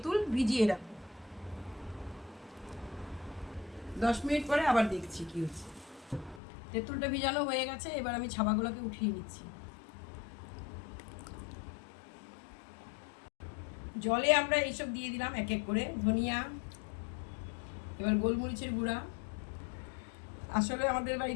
ভিজিয়ে রাখবো। 10 মিনিট পরে আবার দেখছি কি হচ্ছে। তেঁতুলটা ভিজানো হয়ে গেছে, এবার আমি ছাবাগুলোকে উঠিয়ে নিচ্ছি। জলে আমরা এইসব দিয়ে দিলাম এক এক করে, ধনিয়া, এবার গোলমরিচের গুঁড়া। আসলে আমাদের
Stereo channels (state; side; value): drops out; right; at 6.4 s